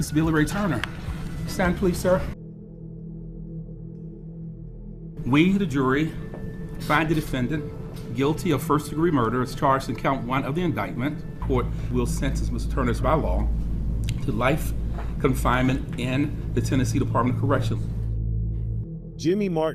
Billy Ray Turner. Stand, please, sir. We, the jury, find the defendant guilty of first-degree murder as charged in count 1 of the indictment. Court will sentence Mr. Turner by law to life confinement in the Tennessee Department of Corrections. Jimmy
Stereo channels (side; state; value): both; identical; correlation 1.00